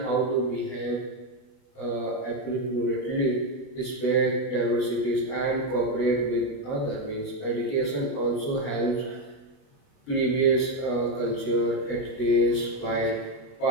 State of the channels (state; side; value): late; right; 29 ms